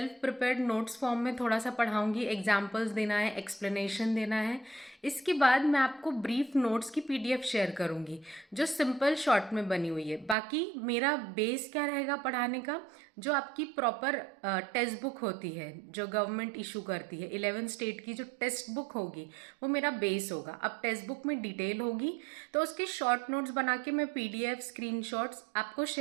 प्रिपेयर्ड नोट्स फॉर्म में थोड़ा सा पढ़ाऊंगी, एग्जाम्पल्स देना है, एक्सप्लेनेशन देना है. इसके बाद मैं आपको ब्रीफ नोट्स की पीडीएफ शेयर करूंगी जो सिंपल शॉर्ट में बनी हुई है. बाकी मेरा बेस क्या रहेगा पढ़ाने का? जो आपकी प्रॉपर टेक्स्ट बुक होती है जो गवर्नमेंट इशू करती है, 11 स्टेट की जो टेक्स्ट बुक होगी वो मेरा बेस होगा. अब टेक्स्ट बुक में डिटेल होगी तो उसके शॉर्ट नोट्स बना के मैं पीडीएफ स्क्रीनशॉट्स आपको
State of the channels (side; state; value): left; drops out; at 10.4 s